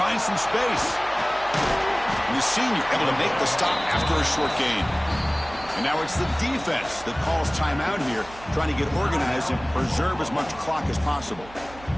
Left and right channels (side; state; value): right; noise; hum, 19 dB below the sound